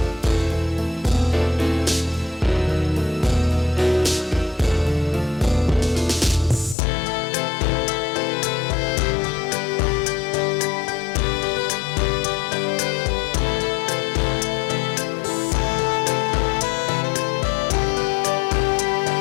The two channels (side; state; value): right; drops out; at 6.8 s